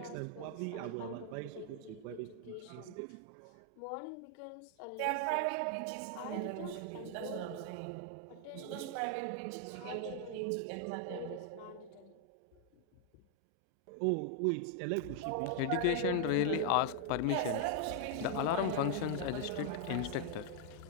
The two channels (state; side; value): different; both; correlation 0.00